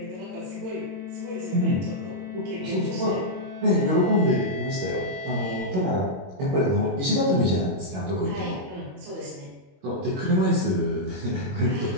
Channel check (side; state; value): left; late; 22 ms